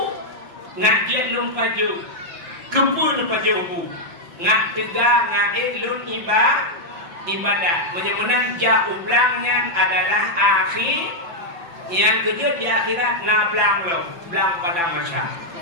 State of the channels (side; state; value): left; late; 5.9 ms